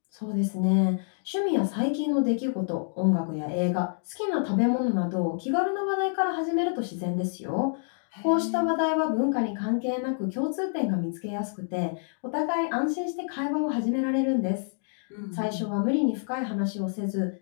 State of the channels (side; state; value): right; silent; digital silence